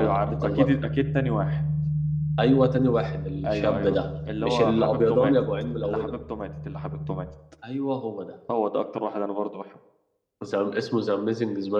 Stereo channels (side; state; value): both; identical; correlation 1.00